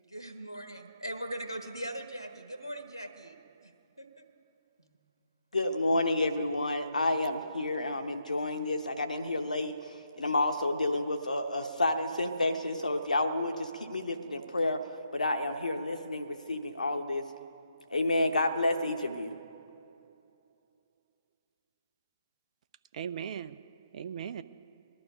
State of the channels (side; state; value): both; inverted; correlation -0.79